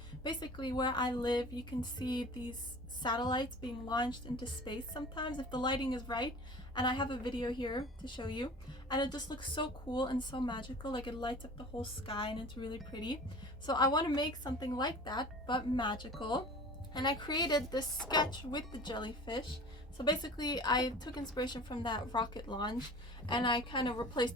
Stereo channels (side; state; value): both; normal; correlation 0.41